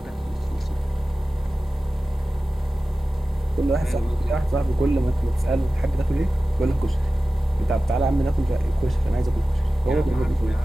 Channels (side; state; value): both; normal; correlation 0.96